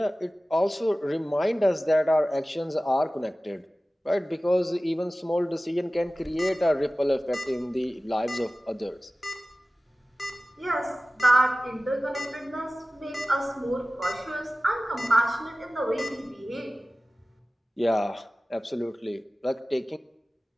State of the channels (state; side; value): normal; both; correlation 0.97